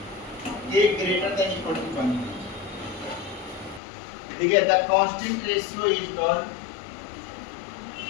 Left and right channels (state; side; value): drops out; right; at 3.8 s